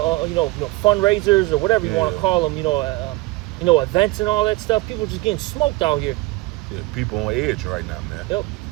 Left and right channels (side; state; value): left; quieter; 20.9 dB